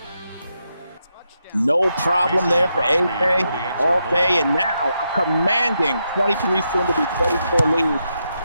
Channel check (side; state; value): both; inverted; correlation -0.83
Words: No problem there for AJ all day, and now a commanding 23, soon to be 24 lead.